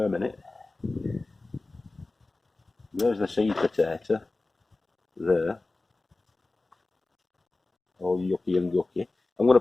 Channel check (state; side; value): quieter; right; 3.2 dB